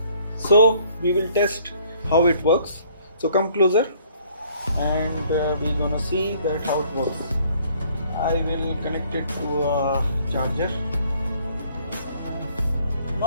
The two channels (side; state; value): both; inverted; correlation -0.61